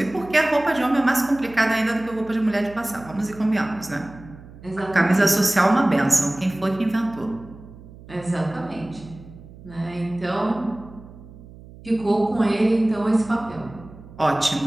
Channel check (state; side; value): noise; right; hum, 19 dB below the sound